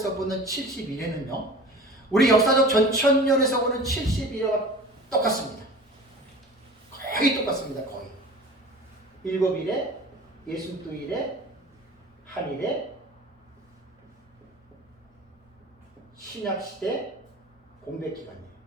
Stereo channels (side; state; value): both; normal; correlation 0.40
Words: 보는 71회는요, 우리 역사적 전천년에서 보는 71회와 똑같습니다. 거의 똑같습니다. 거의. 7일에, 62일에, 한일에, 신약시대 공백기간이에요.